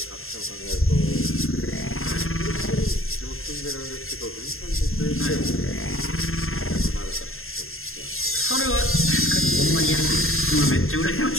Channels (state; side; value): late; right; 0.61 ms